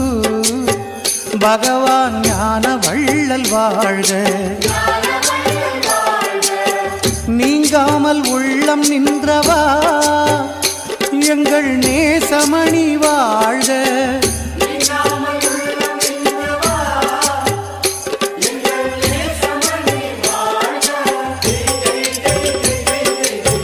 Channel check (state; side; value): identical; both; correlation 1.00